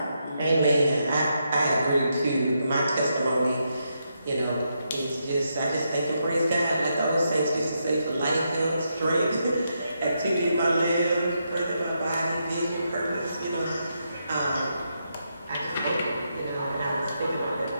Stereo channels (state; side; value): inverted; both; correlation -0.82